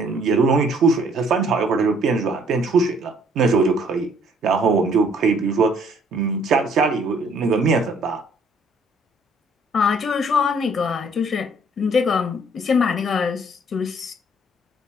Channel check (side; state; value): both; normal; correlation 0.61